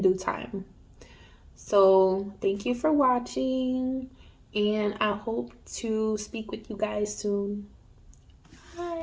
due time. So, thank you for watching, and I hope to speak with you guys soon.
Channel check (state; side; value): identical; both; correlation 1.00